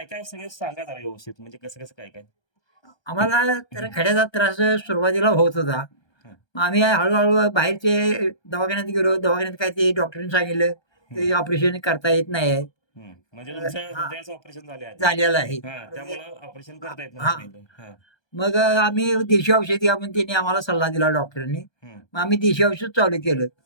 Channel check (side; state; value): right; late; 1.2 ms